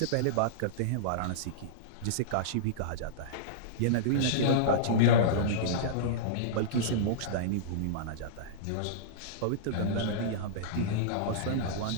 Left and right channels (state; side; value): different; both; correlation -0.03